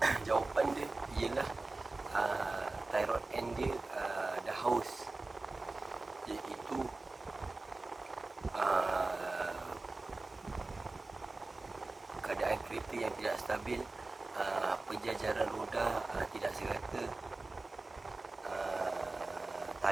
jawapan dia ialah tie rod end dia dah haus, iaitu keadaan kereta yang tidak stabil, penjajaran roda tidak serata,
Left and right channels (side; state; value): left; quieter; 3.3 dB